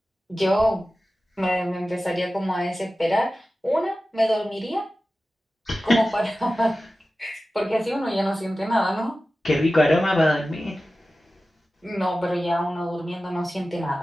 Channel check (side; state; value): both; normal; correlation 0.95